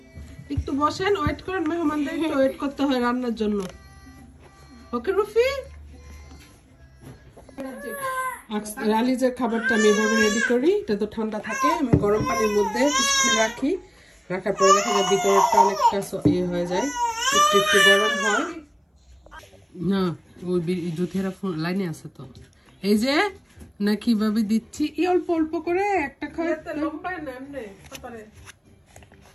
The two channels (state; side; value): identical; both; correlation 1.00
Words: একটু বসেন, ওয়েট করেন, মেহমানদের একটু ওয়েট করতে হয় রান্নার জন্য। ওকে রুফি, রালিজের খাবারটা আমি এভাবে রেডি করি। এটা তো ঠান্ডা থাকে, আমি গরম পানির মধ্যে কিছুক্ষণ রাখি। রাখার পরে দেখা যায় ভিতরটা অনেকটা ইয়ে হয়ে যায়, একটু একটু গরম হয় না। ওই জুথিয়ারা লাইনে আছে তো, এই যে না কিভাবে দিচ্ছি, অল্প অল্প করে একটা